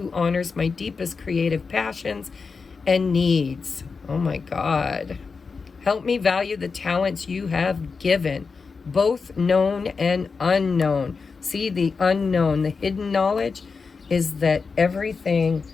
honors my deepest creative passions and needs. Oh my God. Help me value the talents you have given, both known and unknown. See, the unknown, the hidden knowledge is that everything,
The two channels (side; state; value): right; quieter; 4.9 dB